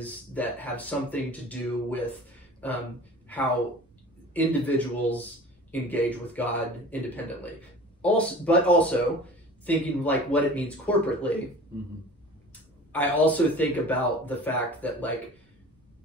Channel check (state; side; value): normal; both; correlation 0.41